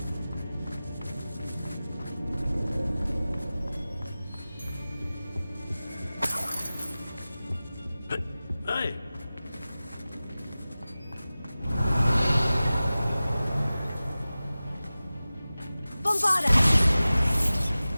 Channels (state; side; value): inverted; both; correlation -0.97